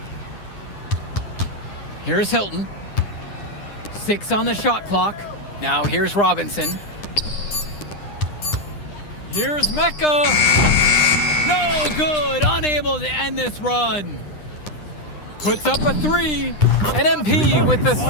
Here's Hilton. 6 on the shot clock. Now here's Robinson. Here's Mecca. No good. Unable to end this run. Puts up a 3. And MP with the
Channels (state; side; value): late; right; 9.9 ms